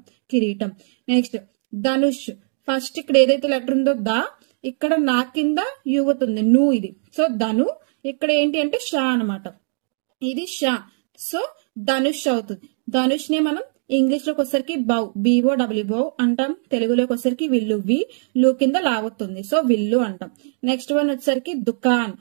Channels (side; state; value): left; silent; digital silence